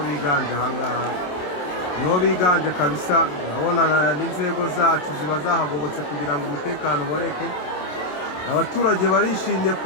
biganje ahangaha, nibo biganje kabisa. Urabona n'inzego zacu ziba zahagobotse kugira ngo umutekano uboneke. Abaturage barishimye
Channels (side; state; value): right; late; 27 ms